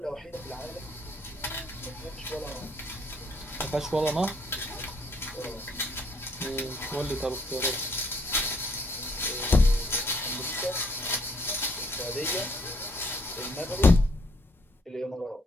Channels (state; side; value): normal; both; correlation 0.66